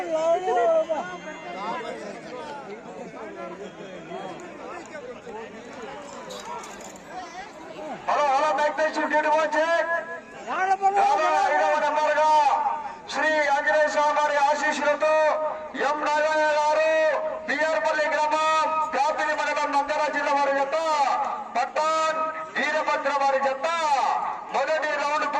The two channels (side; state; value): both; identical; correlation 1.00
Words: hello hello నెంబర్గా Shri Anjaneya స్వామి వారి ఆశీస్సులతో ఎం నాగయ్య గారు బిఆర్పల్లి గ్రామం కాపిలి మండలం నంద్యాల జిల్లా వారి జత పట్టాన్ వీరభద్ర వారి జత మొదటి రౌండ్